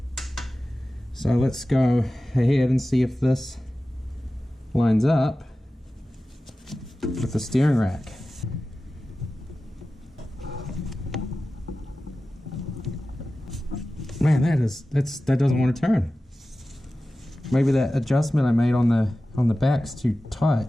So let's go ahead and see if this lines up with the steering rack. Man, that doesn't want to turn. Maybe that adjustment I made on the back's too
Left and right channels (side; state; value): both; normal; correlation 0.95